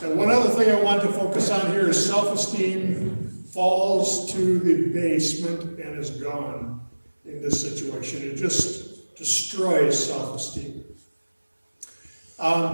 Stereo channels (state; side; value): inverted; both; correlation -1.00